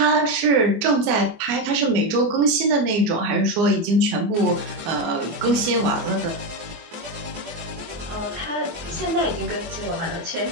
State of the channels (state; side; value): late; left; 24 ms